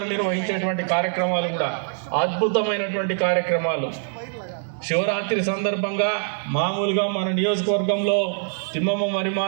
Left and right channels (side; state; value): left; silent; 63 dB below the other